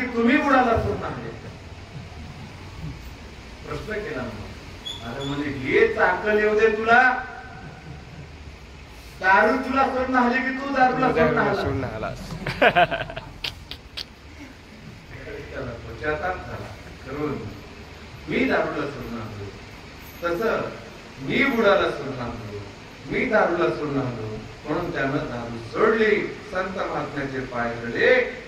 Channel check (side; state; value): both; identical; correlation 1.00